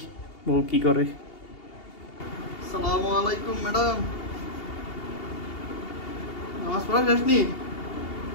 বউ কি করে। আসসালামু আলাইকুম ম্যাডাম, নামাজ পড়া শেষ নি?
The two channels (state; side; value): late; right; 2.8 ms